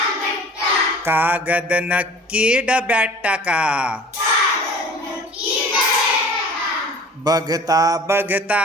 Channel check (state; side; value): normal; both; correlation 0.45